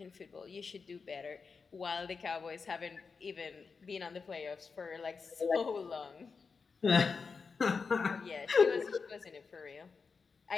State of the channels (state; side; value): quieter; right; 5.0 dB